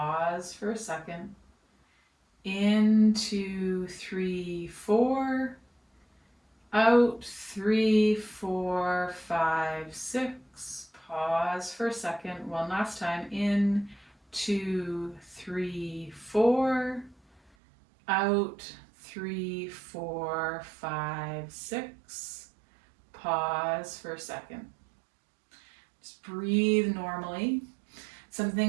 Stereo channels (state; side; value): drops out; left; at 17.4 s